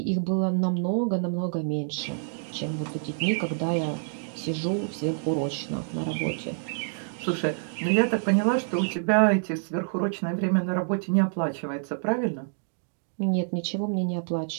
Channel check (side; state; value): left; silent; digital silence